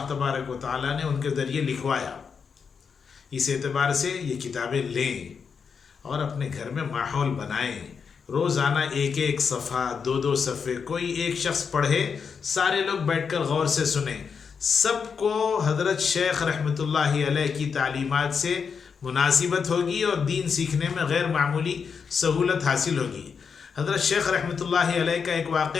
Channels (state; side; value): quieter; right; 6.1 dB